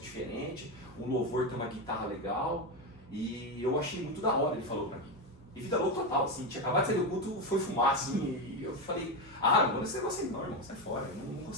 diferentes, um louvor tem uma guitarra legal, e eu achei muito da hora, ele falou para mim. E vida louca total, assim, tinha acabado de sair do culto, foi fumar, assim, e eu falei, não vou nesse negócio aí não, irmão, sai fora, eu não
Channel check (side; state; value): both; normal; correlation 0.13